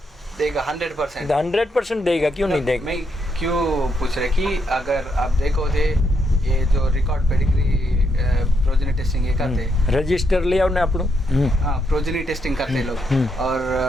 देगा 100%। 100% देगा, क्यों नहीं देगा। मैं क्यों पूछ रहे कि अगर आप देखो थे ये जो रिकॉर्ड पेडिग्री प्रोजेनी टेस्टिंग ये करते रजिस्टर ले आओ ना अपनों। हाँ, प्रोजेनी टेस्टिंग करते लोग। और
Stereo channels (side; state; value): both; normal; correlation 0.78